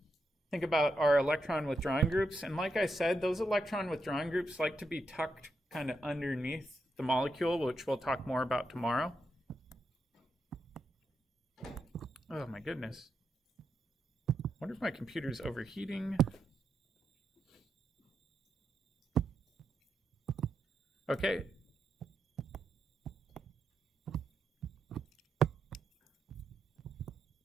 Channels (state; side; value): normal; both; correlation 0.84